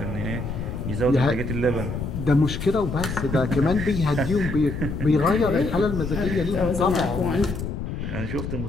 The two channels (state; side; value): noise; left; rumble, 5 dB below the sound